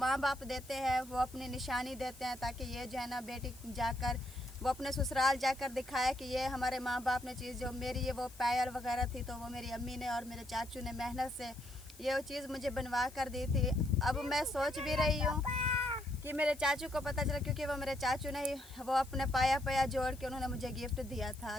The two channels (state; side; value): noise; left; hiss, 21 dB below the sound